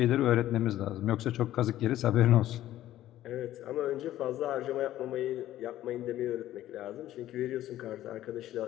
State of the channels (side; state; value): right; quieter; 13.6 dB